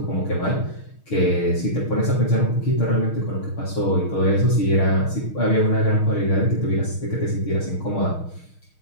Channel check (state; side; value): late; right; 6.4 ms